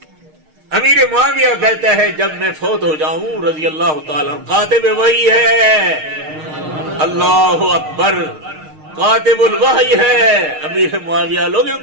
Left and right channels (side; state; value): left; late; 6.5 ms